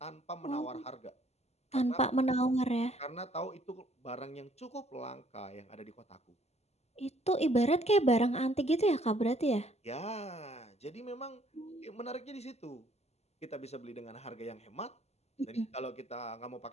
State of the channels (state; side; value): late; right; 0.31 ms